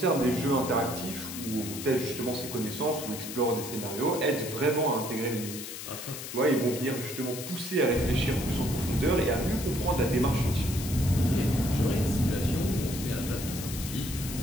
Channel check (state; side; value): noise; left; hiss, 9 dB below the sound